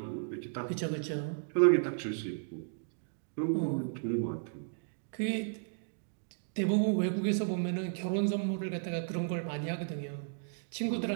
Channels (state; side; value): silent; left; digital silence